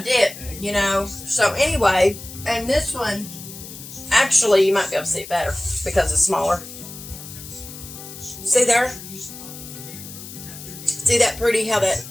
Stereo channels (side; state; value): left; noise; hiss, 13 dB below the sound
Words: didn't, you know. So anyway, and this one, actually, you might be able to see it better because it's smaller. See there? See that pretty, how that